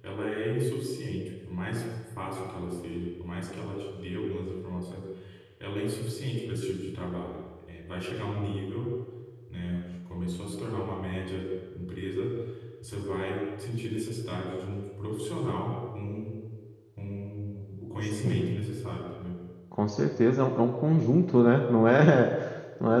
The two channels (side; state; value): both; identical; correlation 1.00